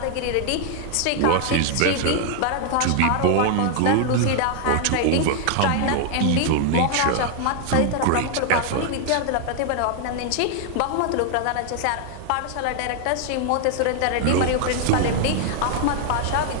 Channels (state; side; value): different; both; correlation 0.00